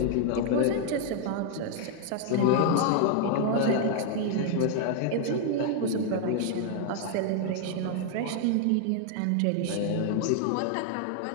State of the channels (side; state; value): both; different; correlation 0.00